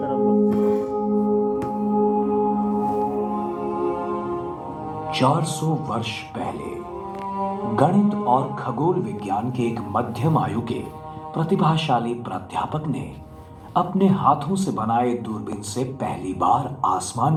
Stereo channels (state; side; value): identical; both; correlation 1.00